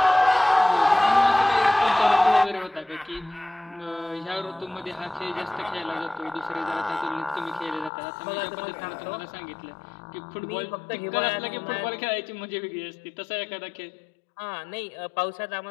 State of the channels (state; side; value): drops out; right; at 7.9 s